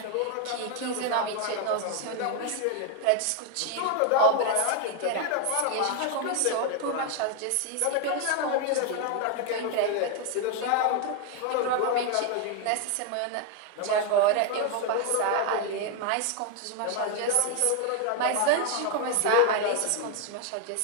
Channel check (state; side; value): different; both; correlation 0.01